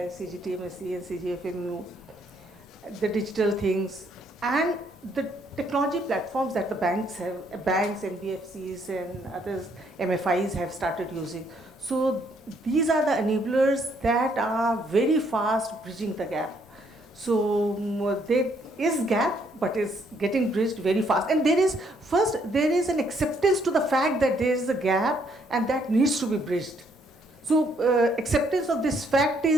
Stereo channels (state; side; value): normal; both; correlation 0.69